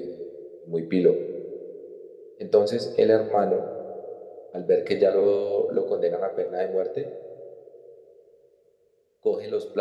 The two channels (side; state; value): both; identical; correlation 1.00